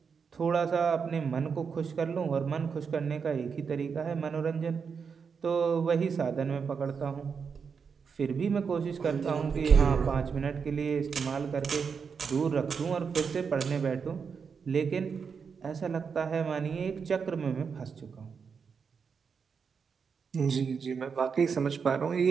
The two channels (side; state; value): left; quieter; 6.0 dB